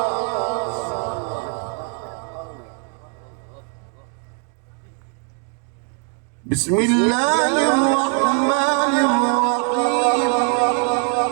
بسم الله الرحمن الرحيم.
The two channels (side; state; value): left; quieter; 39.7 dB